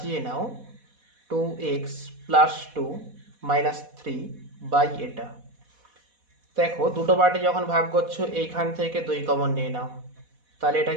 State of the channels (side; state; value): left; late; 4.1 ms